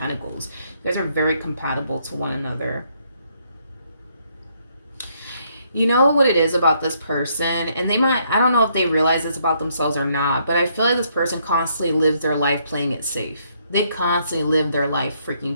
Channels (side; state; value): both; inverted; correlation -0.71